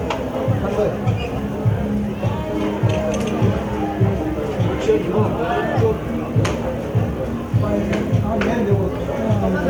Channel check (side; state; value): both; identical; correlation 1.00